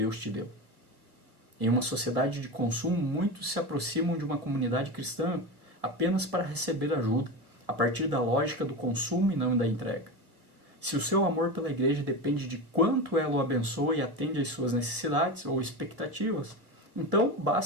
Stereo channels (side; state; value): left; late; 1.7 ms